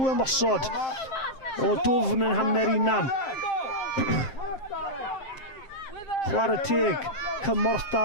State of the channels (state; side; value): late; right; 7.6 ms